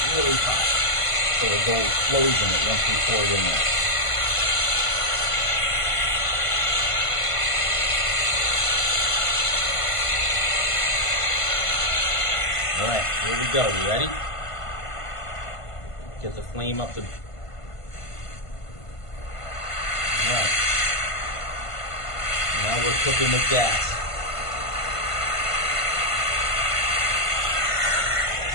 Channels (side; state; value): right; late; 1.5 ms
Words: really hot, so the gold flows in it once we pour it in there. All right, here we go. You ready? Get the flame up to... All right. Now we're cooking with gas.